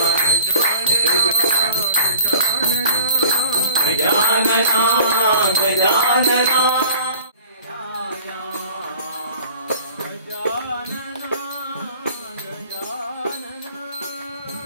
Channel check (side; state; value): both; inverted; correlation -0.44